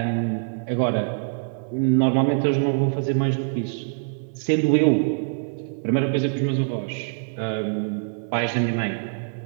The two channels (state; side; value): silent; left; digital silence